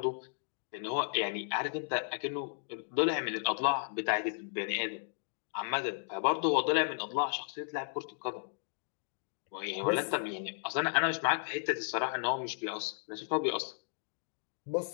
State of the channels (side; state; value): right; silent; digital silence